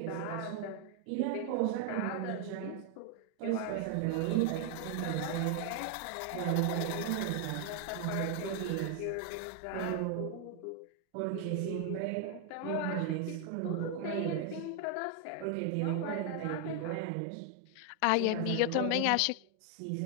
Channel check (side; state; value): both; different; correlation 0.00